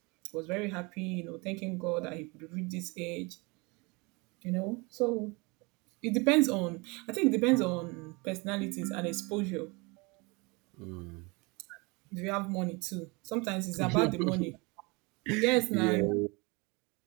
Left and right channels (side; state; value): left; quieter; 27.6 dB